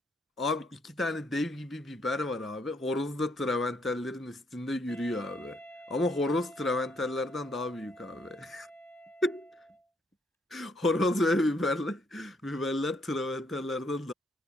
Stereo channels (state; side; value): normal; both; correlation 0.71